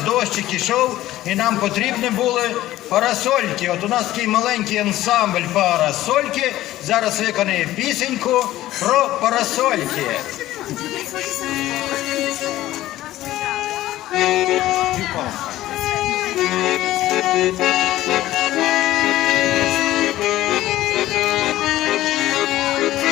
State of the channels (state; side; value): quieter; right; 15.0 dB